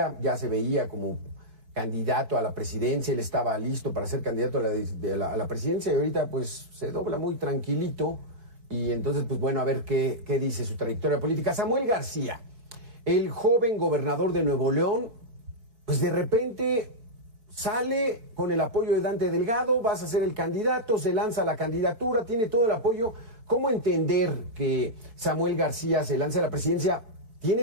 ya se veía como candidato a la presidencia, él estaba listo para ser candidato a la presidencia y ahorita pues se dobla muy tranquilito y entonces pues bueno, a ver qué dice su trayectoria política. Samuel García, el joven gobernador de Nuevo León, pues de repente sale con el apoyo de Dante Delgado, vas a ser el candidato, se lanza la candidatura, tiene todo el apoyo. ¿Cómo entender que Samuel García se lance a la presidencia?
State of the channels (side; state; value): left; late; 4.6 ms